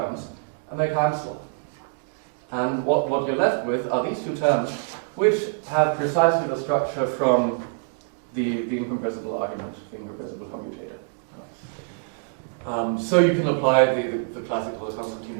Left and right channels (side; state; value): left; silent; digital silence